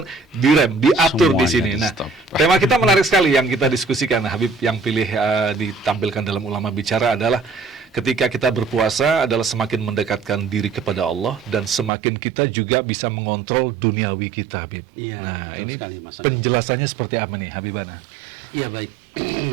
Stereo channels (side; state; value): left; drops out; at 11.9 s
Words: direm, diatur di Semuanya sini. Nah, di-stop. tema kita menarik sekali yang kita diskusikan, Habib, yang pilih ditampilkan dalam Ulama Bicara adalah ketika kita berpuasa adalah semakin mendekatkan diri kepada Allah dan semakin kita juga bisa mengontrol duniawi kita, Habib. Iya, betul ini sekali, Mas Agung. penjelasannya seperti apa nih, Habibana? Ya, baik.